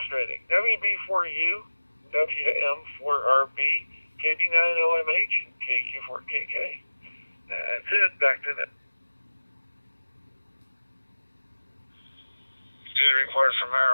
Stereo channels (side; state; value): both; inverted; correlation -1.00